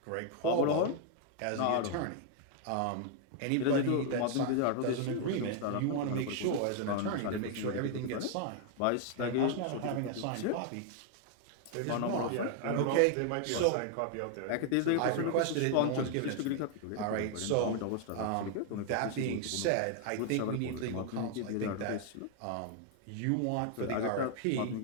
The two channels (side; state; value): both; different; correlation 0.00